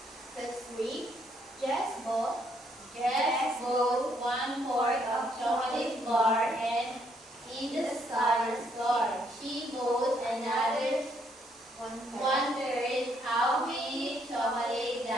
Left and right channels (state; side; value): normal; both; correlation 0.71